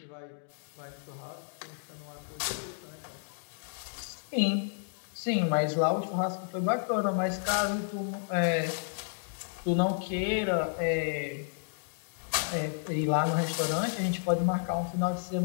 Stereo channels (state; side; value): silent; right; digital silence